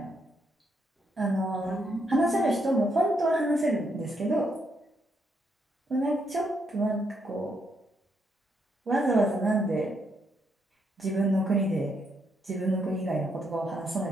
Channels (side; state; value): both; normal; correlation 0.77